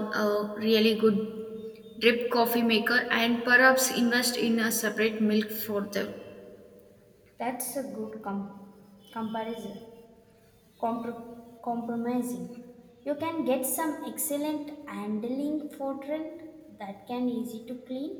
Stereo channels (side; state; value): both; identical; correlation 1.00